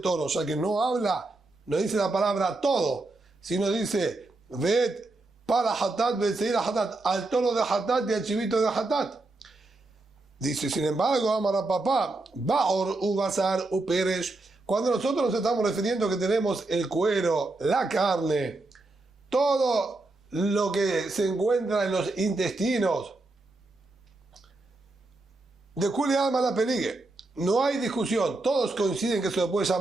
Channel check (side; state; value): left; quieter; 3.0 dB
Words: toro, ya que no habla, no dice la palabra todo, sino dice, ved para Hatat, Betseir Hatat, al toro de Hatat y al chivito de Hatat. Dice, sin embargo, Amara papá, Baor, Ubazar, Uperesh, cuando nosotros nos estamos refiriendo que tenemos el cuero, la carne, todo lo que se encuentra en los intestinos, de Kuli Alma la Peligue, no hay discusión, todos coinciden que se le puede